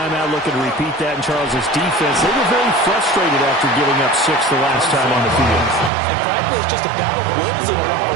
out, looking to repeat that in Charles's defense. They were very frustrated after giving up 6 the last time on the field. And frankly, it's just a battle of wills in a lot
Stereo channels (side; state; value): left; drops out; at 5.9 s